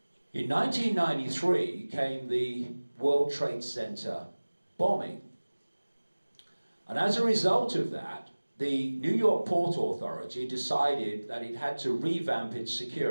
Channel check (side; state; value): both; inverted; correlation -1.00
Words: in 1993 came the World Trade Center bombing. And as a result of that, the New York Port Authority decided that it had to revamp its